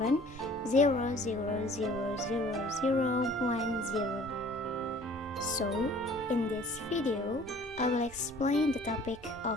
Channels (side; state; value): both; normal; correlation 0.51